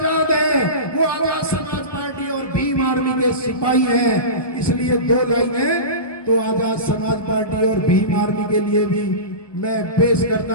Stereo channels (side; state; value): right; late; 1.2 ms